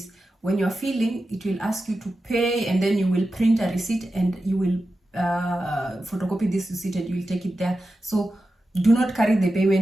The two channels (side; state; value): both; normal; correlation 0.92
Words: When you're filling, it will ask you to pay, and then you will print a receipt and you will photocopy this receipt and you will take it there. So do not carry the